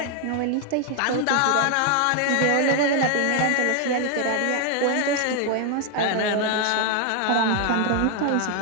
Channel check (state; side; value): different; both; correlation 0.00